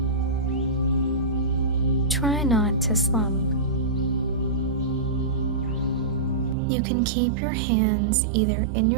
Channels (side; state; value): left; drops out; at 6.6 s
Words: Try not to slump. You can keep your hands either in